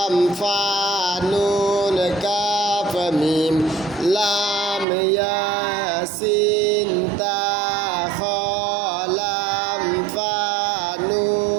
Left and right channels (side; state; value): left; drops out; at 4.9 s